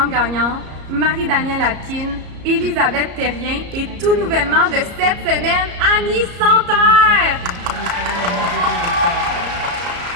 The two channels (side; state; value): left; late; 34 ms